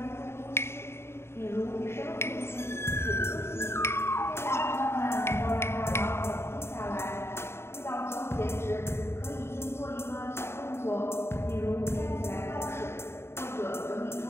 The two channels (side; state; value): right; late; 0.12 ms